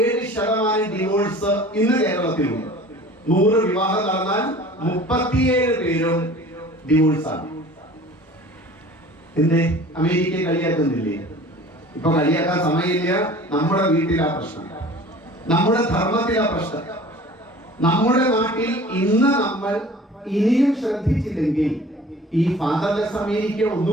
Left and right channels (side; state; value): both; normal; correlation 0.45